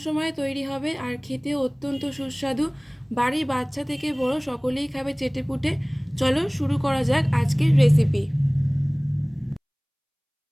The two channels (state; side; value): identical; both; correlation 1.00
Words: সময়ে তৈরি হবে আর খেতেও অত্যন্ত সুস্বাদু। বাড়ির বাচ্চা থেকে বড় সকলেই খাবে চেটেপুটে। চলো শুরু করা যাক আজকের রেসিপি।